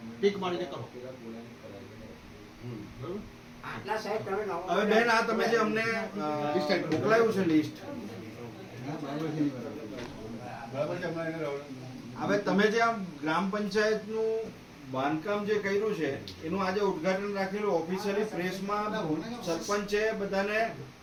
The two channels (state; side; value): identical; both; correlation 1.00